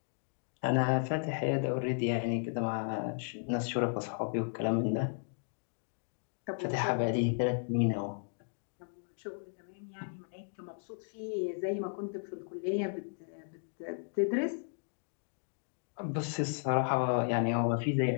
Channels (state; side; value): silent; right; digital silence